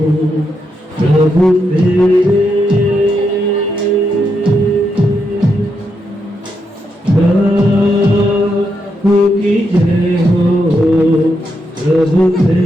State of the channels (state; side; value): normal; both; correlation 0.82